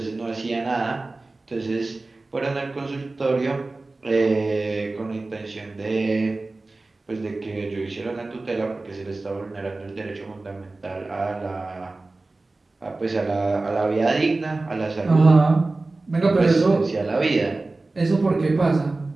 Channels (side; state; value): left; quieter; 3.2 dB